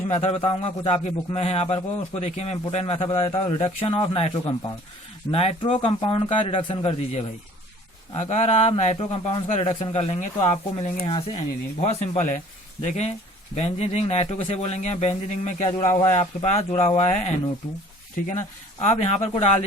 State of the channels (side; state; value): both; normal; correlation 0.51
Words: मेथड बताऊंगा, कुछ आपकी बुक में है यहाँ पर को, उसको देखिए मैं इंपोर्टेंट मेथड बता देता हूँ। Reduction of nitro compound, nitro compound का रिडक्शन कर दीजिए भाई। अगर आप नाइट्रो कंपाउंड का रिडक्शन कर लेंगे तो आपको मिलेंगे यहाँ से एनिलीन। बहुत सिंपल है, देखें बेंजीन रिंग नाइट्रो कैसे बोलेंगे, बेंजीन रिंग में क्या जुड़ा हुआ है आपके पास, जुड़ा हुआ है NO2, ठीक है ना। आप यहाँ पर को डाल